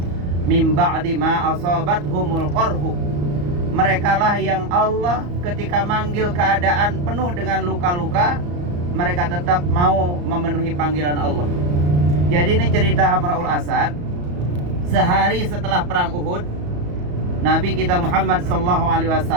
min ba'di ma asabathumul qarhu. Merekalah yang Allah ketika manggil keadaan penuh dengan luka-luka, mereka tetap mau memenuhi panggilan Allah. Jadi ini cerita Hamraul Asad. Sehari setelah perang Uhud, Nabi kita Muhammad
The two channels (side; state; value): left; late; 34 ms